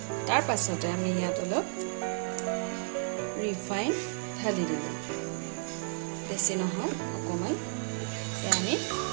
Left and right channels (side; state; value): left; silent; 56 dB below the other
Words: তাৰ পাছতে আমি ইয়াত অলপ ৰিফাইন ঢালি দিলোঁ। বেছি নহয়, অকণমান। আমি